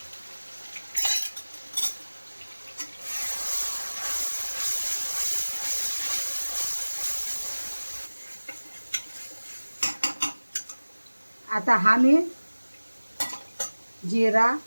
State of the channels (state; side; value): inverted; both; correlation -1.00